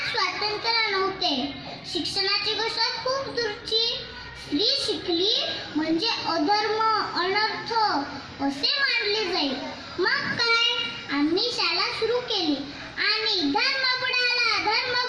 स्वातंत्र्य नव्हते. शिक्षणाची गोष्ट खूप दूरची. स्त्री शिकली म्हणजे अधर्म, अनर्थ असे मानले जाईल. मग काय, आम्ही शाळा सुरू केली आणि धर्म बुडाला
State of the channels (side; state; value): both; identical; correlation 1.00